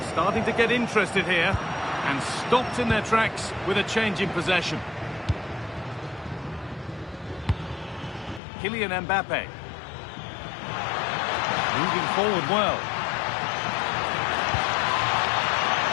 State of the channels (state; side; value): drops out; right; at 8.4 s